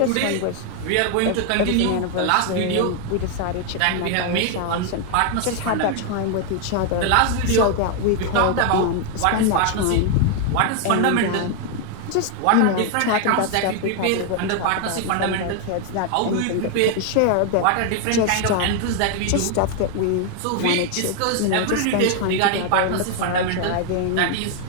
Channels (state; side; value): different; both; correlation 0.00